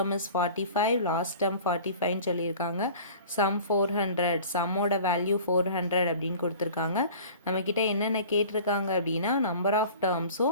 is 45, last term 45 சொல்லியிருக்காங்க. sum 400, sum ஓட value 400 அப்படின்னு கொடுத்திருக்காங்க. நம்ம கிட்ட என்னென்ன கேட்டிருக்காங்க அப்படின்னா number of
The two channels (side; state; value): both; inverted; correlation -0.43